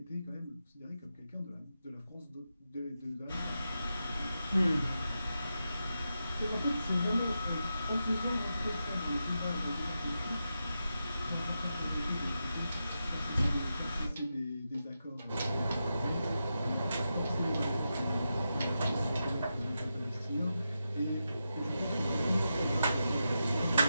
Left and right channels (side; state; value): both; inverted; correlation -0.88